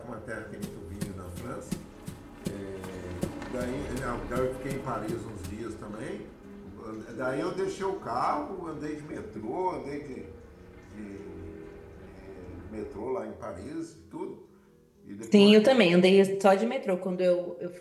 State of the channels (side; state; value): both; identical; correlation 1.00